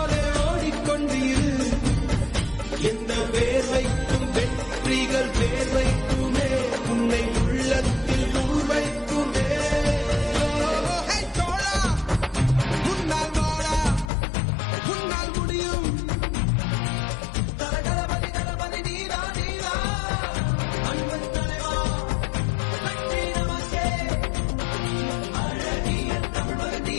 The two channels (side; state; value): right; drops out; at 14.1 s